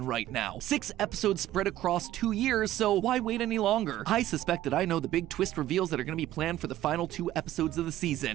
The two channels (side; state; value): left; quieter; 13.9 dB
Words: right now. 6 episodes spread across 2 years, so why wait any longer? I suspect that I know the big twist reveals that are going to be planned for the final 2 episodes of the